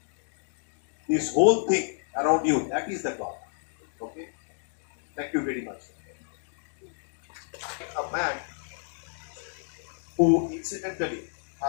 this whole thing around you, that is the God. Okay? Thank you very much. A man who incidentally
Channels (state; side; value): silent; right; digital silence